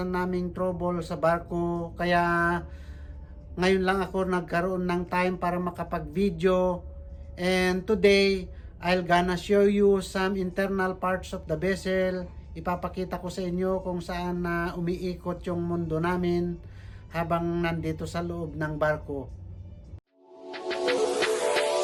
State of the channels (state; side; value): identical; both; correlation 1.00